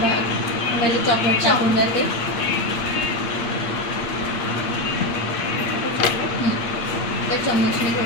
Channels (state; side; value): late; right; 8.7 ms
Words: भाग पहिले चॉकलेट टाकून जाते. त्या चम्मचने